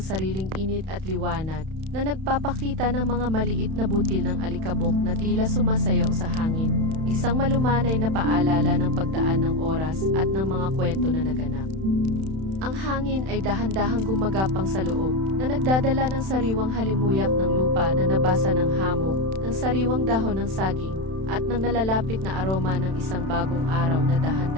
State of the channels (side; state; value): left; late; 31 ms